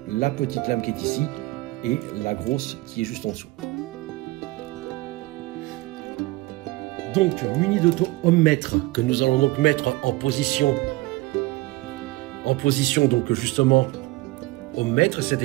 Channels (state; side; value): quieter; left; 20.5 dB